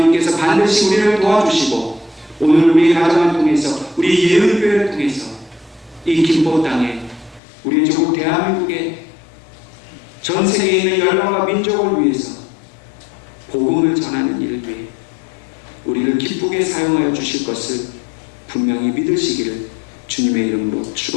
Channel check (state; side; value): drops out; right; at 7.4 s